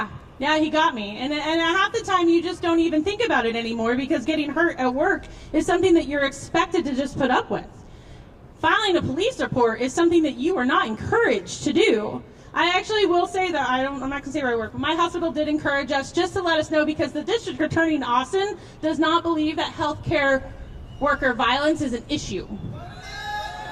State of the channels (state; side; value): identical; both; correlation 1.00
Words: he got me. And half the time, you just don't even think about it anymore because getting hurt at work is something that you're expected to just put up with. Filing a police report is something that you are not encouraged to do. I actually will say that, I'm not going to say where I work, but my hospital did encourage us just to let us know because the district attorney in Austin does not believe that healthcare worker violence is an issue.